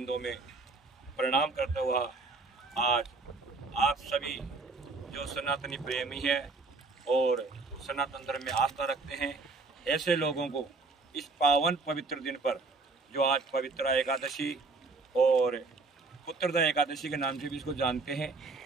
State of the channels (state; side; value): quieter; left; 3.7 dB